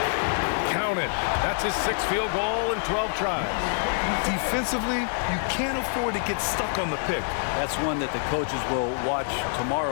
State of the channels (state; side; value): silent; right; digital silence